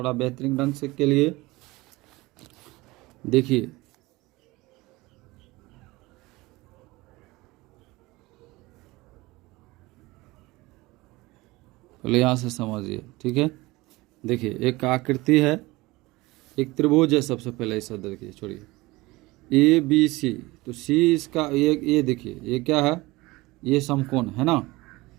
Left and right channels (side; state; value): left; quieter; 21.1 dB